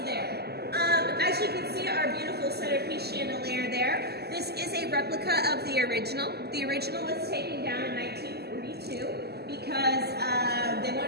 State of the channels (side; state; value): left; late; 0.47 ms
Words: there. As you can see, our beautiful centerpiece chandelier there. This is a replica of the original. The original was taken down in 1942 because they